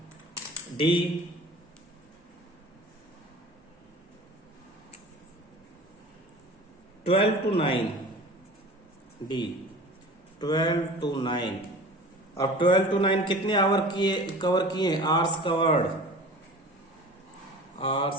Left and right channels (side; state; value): both; normal; correlation 0.39